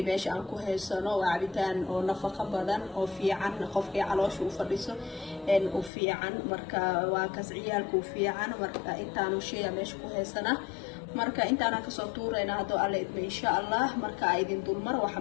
باش أنكو هالسنة وعبيتان أو نفقة بدن أو في عن قفقي على شو فريسه إن وفي عن مركا وكسعيالك وفي عن مركا أنت شيء باش كو هالسنة marka intaana ka soo tuurayna hado alle idma insha Allah marka ay idin dulmar waxa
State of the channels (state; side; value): drops out; right; at 5.9 s